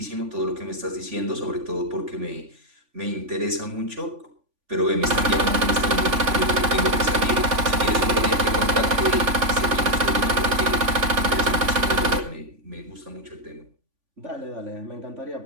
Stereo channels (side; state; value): left; late; 3.5 ms